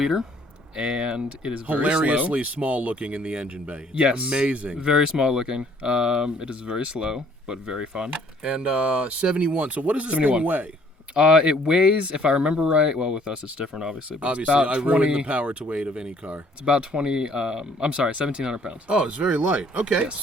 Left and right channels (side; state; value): both; normal; correlation 0.60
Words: and it is very hilariously small looking in the engine bay. It's amazing. Very small looking. It is very slow, but very fun. And 71. So what does this 71. thing weigh? It weighs, if I remember right, well, with us it's different, obviously. But Obviously, it's about I ruined the power to weight of any car. It's about 1,700 pounds. Oh, it's very light. Okay, yes.